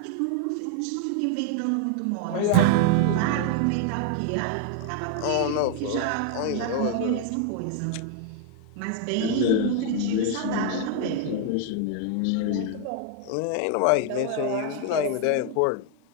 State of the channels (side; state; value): both; different; correlation 0.00